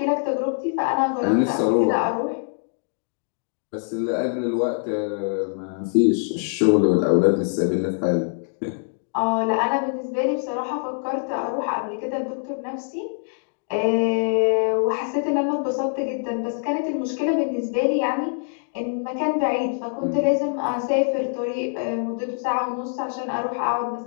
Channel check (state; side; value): silent; right; digital silence